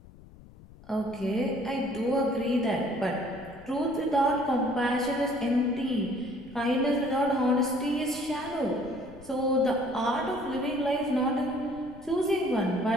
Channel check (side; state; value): left; noise; rumble, 21 dB below the sound